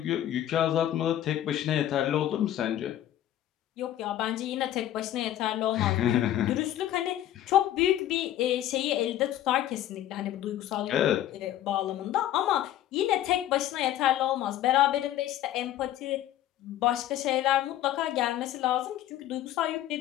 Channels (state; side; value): quieter; right; 12.4 dB